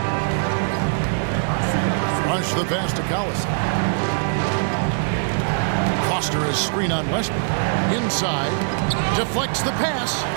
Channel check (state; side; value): silent; left; 64 dB below the other